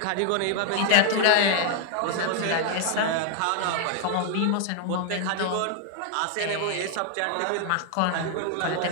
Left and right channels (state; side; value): different; both; correlation 0.00